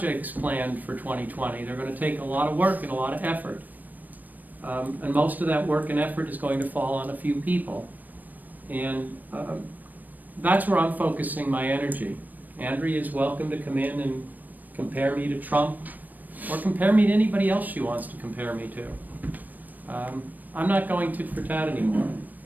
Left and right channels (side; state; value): left; late; 0.085 ms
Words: planned for 2020. They're going to take a lot of work and a lot of effort. And most of that work and effort is going to fall on a few people. And that's where I'm focusing my energy. Andrea is welcome to come in and compare me to Trump, or compare me to anybody else she wants to compare me to. I'm not going tit for tat anymore.